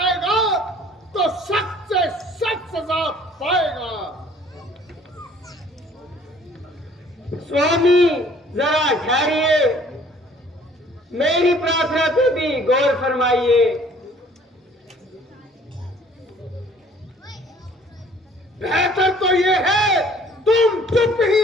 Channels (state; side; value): normal; both; correlation 0.55